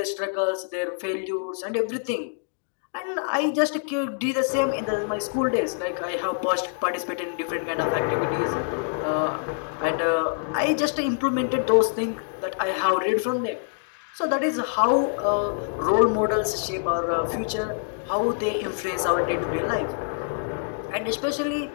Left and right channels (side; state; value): right; silent; digital silence